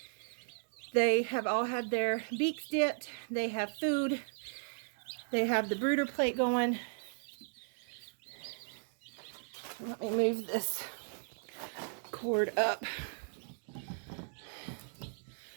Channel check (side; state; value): left; silent; digital silence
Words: They have all had their beaks dipped. They have food. They have the brooder plate going. Let me move this cord up